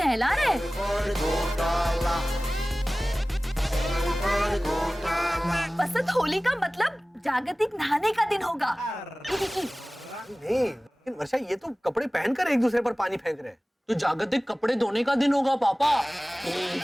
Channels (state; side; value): normal; both; correlation 0.98